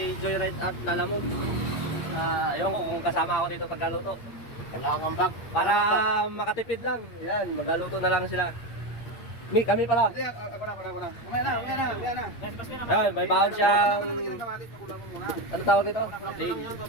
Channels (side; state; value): right; late; 8.6 ms